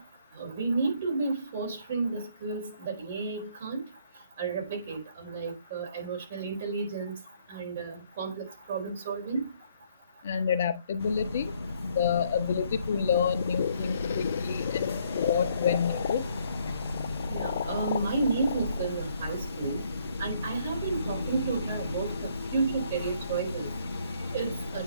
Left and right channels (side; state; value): both; inverted; correlation -0.67